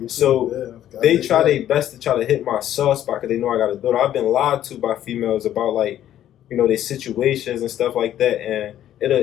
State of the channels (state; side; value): quieter; right; 11.7 dB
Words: So they try their best to try to hit my soft spot because they know I got a daughter. I've been lied to by females about, like, you know, their situations and stuff like that, and